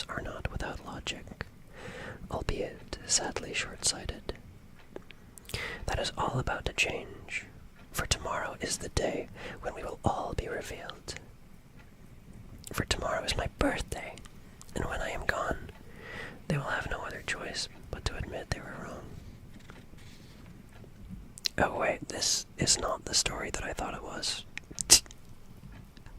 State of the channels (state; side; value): identical; both; correlation 1.00